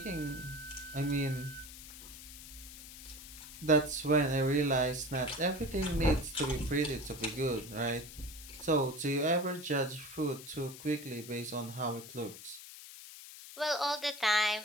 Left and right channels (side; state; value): left; noise; hiss, 14 dB below the sound